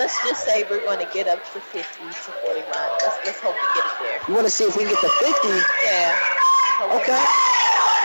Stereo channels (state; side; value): inverted; both; correlation -1.00